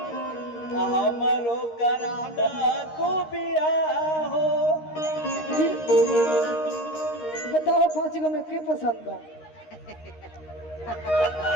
हमरो कराना तू बिया हो। बताओ 5 गो में के पसंद बा?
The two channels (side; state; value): right; late; 13 ms